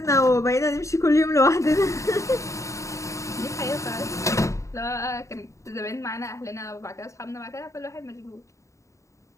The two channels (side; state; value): right; late; 0.15 ms